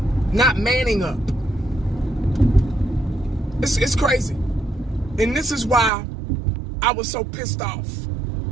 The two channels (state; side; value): drops out; left; at 5.9 s